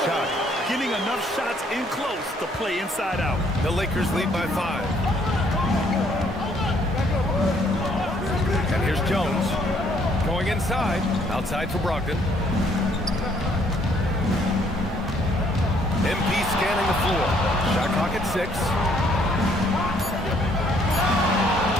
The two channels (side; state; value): both; normal; correlation 0.65